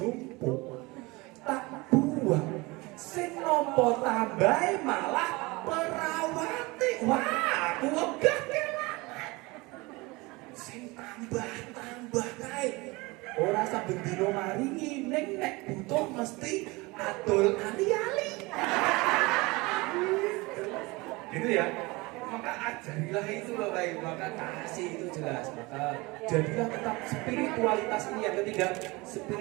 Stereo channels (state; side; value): quieter; left; 23.9 dB